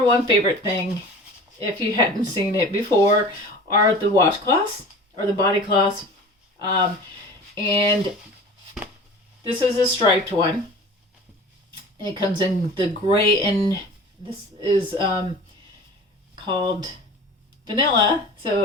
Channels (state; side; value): normal; both; correlation 0.39